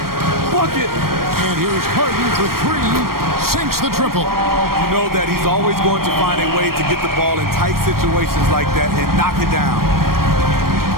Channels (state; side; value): late; left; 0.93 ms